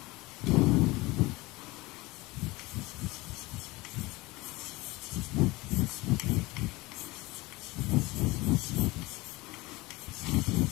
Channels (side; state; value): right; quieter; 21.7 dB